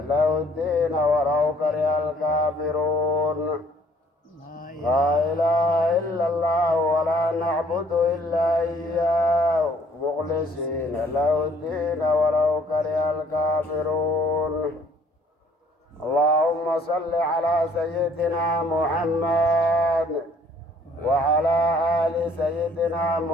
له الدين ولو كره الكافرون. لا إله إلا الله ولا نعبد إلا إياه مخلصين له الدين ولو كره الكافرون. اللهم صل على سيدنا محمد وعلى آل سيدنا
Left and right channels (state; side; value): normal; both; correlation 0.59